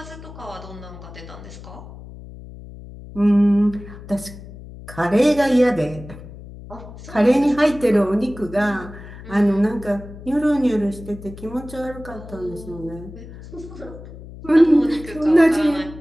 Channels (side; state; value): left; noise; hum, 15 dB below the sound